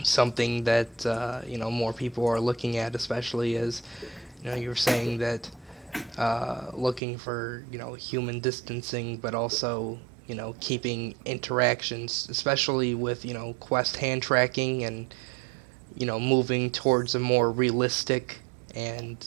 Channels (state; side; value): drops out; left; at 7.0 s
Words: something that more people are looking at, especially as you were saying that looking for human distancing, but also keeping interactions, especially with Quest hand tracking and moving towards a more realistic and